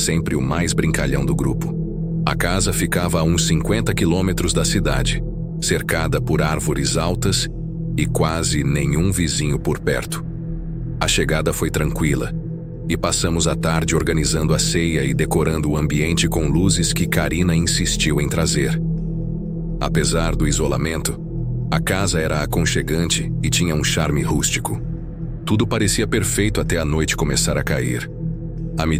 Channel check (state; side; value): identical; both; correlation 1.00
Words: o mais brincalhão do grupo. A casa ficava a uns 50 quilômetros da cidade, cercada por árvores altas e quase nenhum vizinho por perto. A chegada foi tranquila e passamos a tarde organizando a ceia e decorando o ambiente com luzes que Karina insistiu em trazer. Apesar do isolamento, a casa era aconchegante e tinha um charme rústico. Tudo parecia perfeito até a noite começar a cair. À